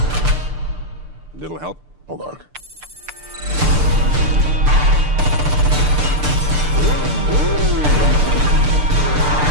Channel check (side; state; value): left; late; 6.7 ms